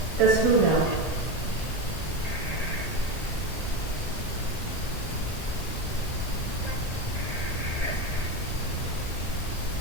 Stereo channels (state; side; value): late; right; 1.8 ms